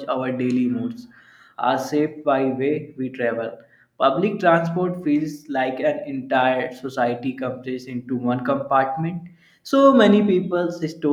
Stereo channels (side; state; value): both; identical; correlation 1.00